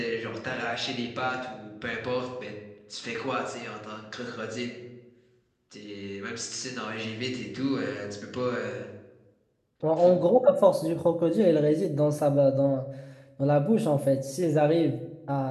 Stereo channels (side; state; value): both; identical; correlation 1.00